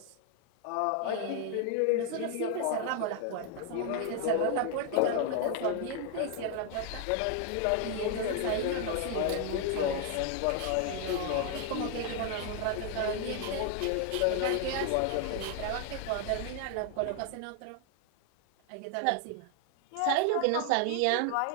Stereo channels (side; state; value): both; different; correlation 0.00